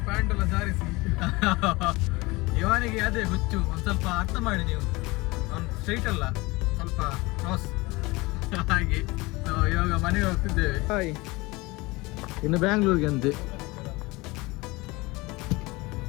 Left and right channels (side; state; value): right; quieter; 22.9 dB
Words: ಪ್ಯಾಂಟ್ ಎಲ್ಲ ಜಾರಿಸಿ ಇವನಿಗೆ ಅದೇ ಹುಚ್ಚು. ಒಂದು ಸ್ವಲ್ಪ ಅರ್ಥ ಮಾಡಿ ನೀವು, ಅವ್ನು ಸ್ಟ್ರೈಟ್ ಅಲ್ಲ, ಸ್ವಲ್ಪ ಕ್ರಾಸ್ ಹಾಗೆ. ಇವಾಗ ಮನೆಗೆ ಹೋಗ್ತಿದ್ದೇವೆ. ಹಾಯ್, ಇನ್ನು ಬ್ಯಾಂಗ್ಳೂರ್ಗೆ ಅಂತೆ.